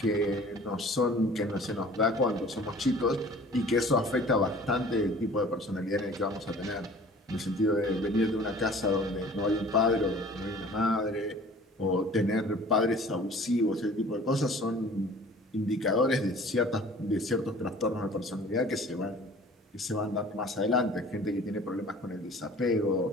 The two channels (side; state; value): both; normal; correlation 0.47